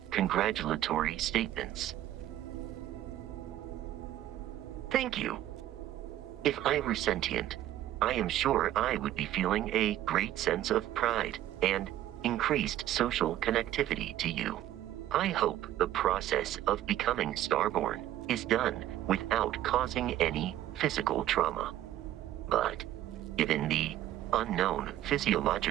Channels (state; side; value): quieter; left; 12.9 dB